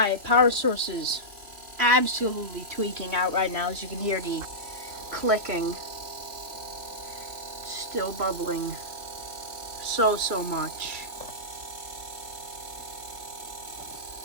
power source is absolutely tweaking out right now. As you can hear the clicking. Still bubbling so much.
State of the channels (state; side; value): late; left; 2.9 ms